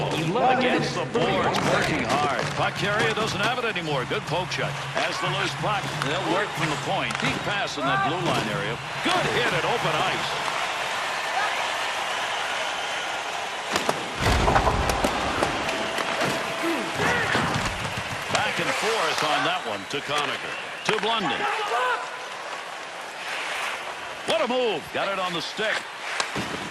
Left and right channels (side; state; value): both; identical; correlation 1.00